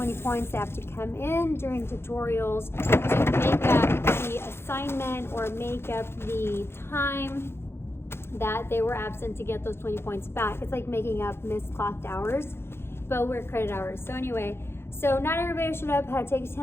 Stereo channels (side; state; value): right; late; 0.12 ms